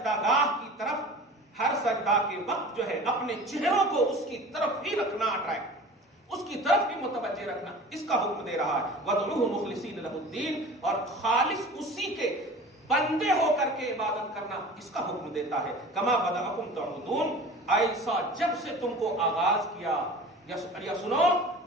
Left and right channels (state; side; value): normal; both; correlation 0.40